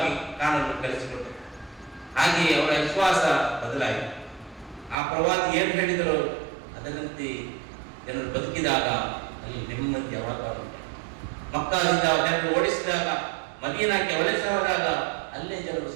ಕಾಣಲು ಕಲಿಸಿಕೊಟ್ಟರು. ಹಾಗೆಯೇ ಅವರ ವಿಶ್ವಾಸ ಬದಲಾಯಿತು. ಆ ಪ್ರವಾದಿ ಏನು ಹೇಳಿದರು ಅದರಂತೆ ಜನರು ಬದುಕಿದಾಗ ಅಲ್ಲಿ ನೆಮ್ಮದಿಯ ವಾತಾವರಣ. ಮಕ್ಕಾದಿಂದ ಜನರು ಓಡಿಸಿದಾಗ, ಮದೀನಾಕ್ಕೆ ವಲಸೆ ಹೋದಾಗ ಅಲ್ಲೇ ಜನರು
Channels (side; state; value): left; drops out; at 5.0 s